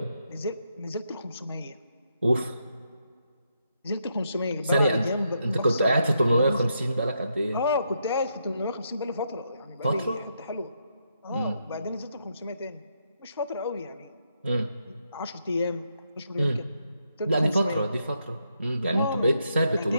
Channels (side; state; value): both; inverted; correlation -0.79